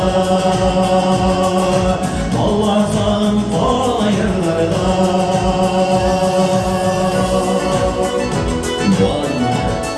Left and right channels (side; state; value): both; identical; correlation 1.00